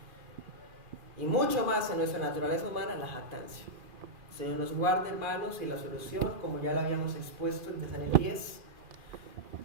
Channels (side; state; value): left; late; 2.4 ms